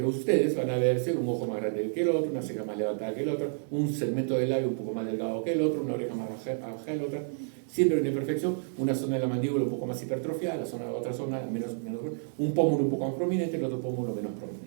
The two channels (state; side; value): silent; left; digital silence